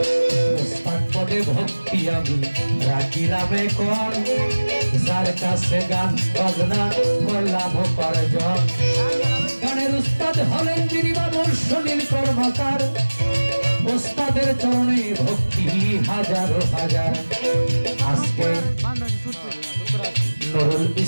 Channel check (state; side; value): inverted; both; correlation -1.00